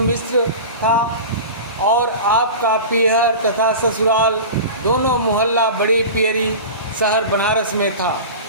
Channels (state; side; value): inverted; both; correlation -0.32